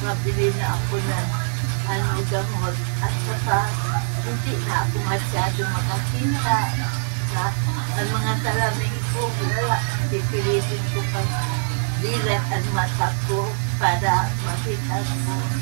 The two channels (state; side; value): silent; left; 63 dB below the other